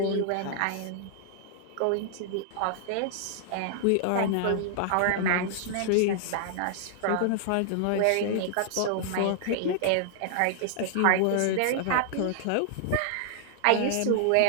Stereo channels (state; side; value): different; both; correlation -0.01